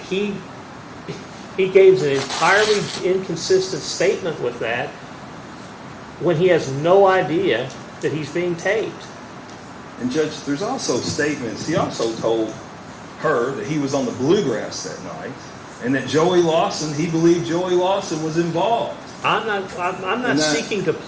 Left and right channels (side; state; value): both; identical; correlation 1.00